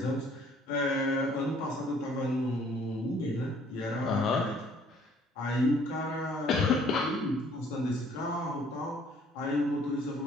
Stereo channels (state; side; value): normal; both; correlation 0.59